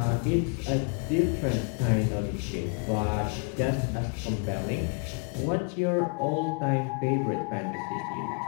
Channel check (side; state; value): right; quieter; 38.9 dB